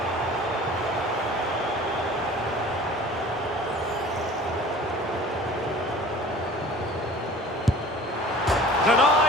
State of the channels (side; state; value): both; normal; correlation 0.44